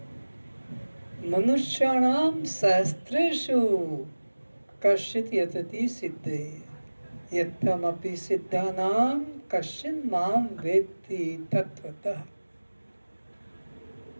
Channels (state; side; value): inverted; both; correlation -1.00